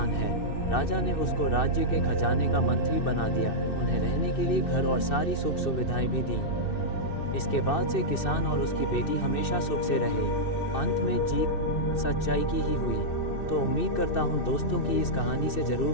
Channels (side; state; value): right; late; 2.6 ms